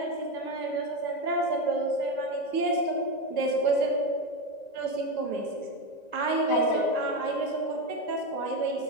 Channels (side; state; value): right; late; 1.9 ms